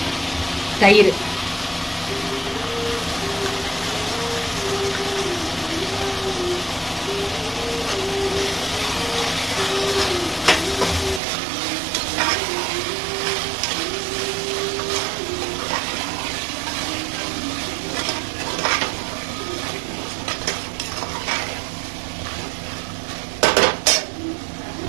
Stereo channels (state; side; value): drops out; left; at 11.2 s